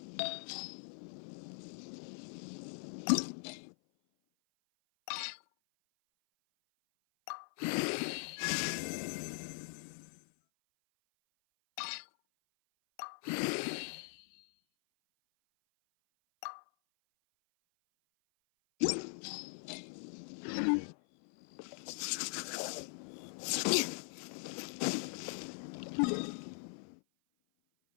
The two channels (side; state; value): right; silent; 51 dB below the other